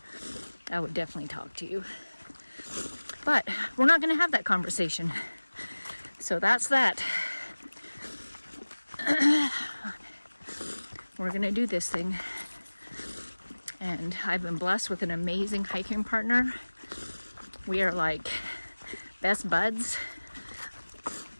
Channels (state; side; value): inverted; both; correlation -1.00